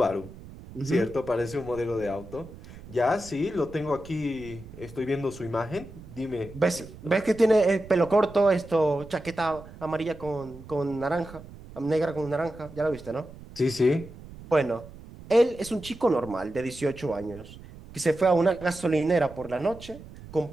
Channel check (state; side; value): noise; right; rumble, 17 dB below the sound